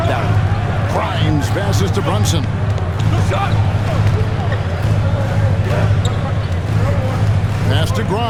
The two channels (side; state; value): both; identical; correlation 1.00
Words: that one. Grimes passes to Brunson. Pass to